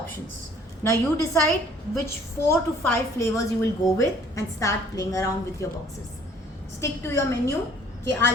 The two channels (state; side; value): normal; both; correlation 0.56